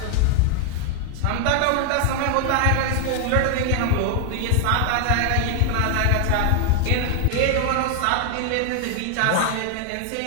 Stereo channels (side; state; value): both; different; correlation 0.00